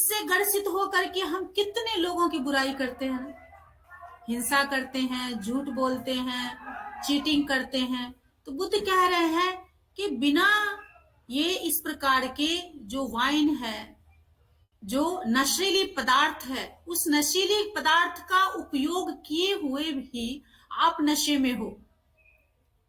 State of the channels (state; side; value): identical; both; correlation 1.00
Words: ग्रसित होकर के हम कितने लोगों की बुराई करते हैं, हिंसा करते हैं, झूठ बोलते हैं, चीटिंग करते हैं। तो बुद्ध कह रहे हैं कि बिना ये इस प्रकार के जो वाइन है, जो नशीली पदार्थ है, उस नशीली पदार्थ का उपयोग किए हुए भी आप नशे में हो,